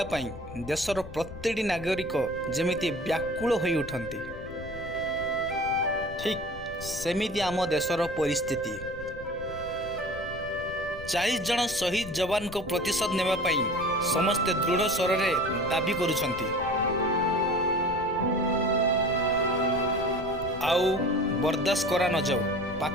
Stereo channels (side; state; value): left; noise; rumble, 14 dB below the sound